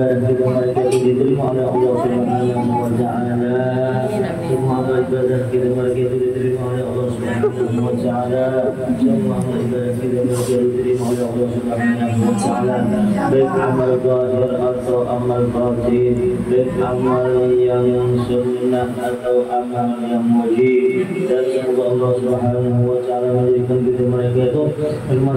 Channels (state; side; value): identical; both; correlation 1.00